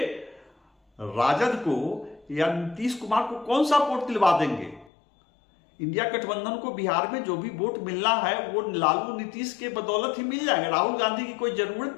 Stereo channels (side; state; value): right; drops out; at 4.9 s